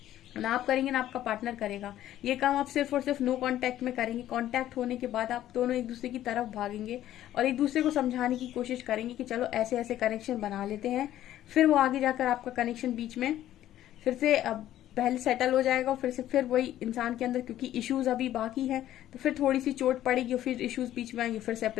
ना आप करेंगे ना आपका पार्टनर करेगा। ये काम आप सिर्फ और सिर्फ नो कांटेक्ट में करेंगे। कांटेक्ट होने के बाद आप दोनों एक दूसरे की तरफ भागेंगे और एक दूसरे को समझाने की कोशिश करेंगे कि चलो ऐसे ऐसे कनेक्शन बना लेते हैं। फिर वो आगे जाकर आपका कनेक्शन बीच में फिर से पहले सेटल हो जाएगा और फिर वही इंसान के अंदर, क्योंकि इश्यूज अभी बाकी है तो फिर थोड़ी सी चोट पड़ेगी और फिर इश्यूज बीच में आएंगे, फिर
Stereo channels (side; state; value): right; quieter; 12.8 dB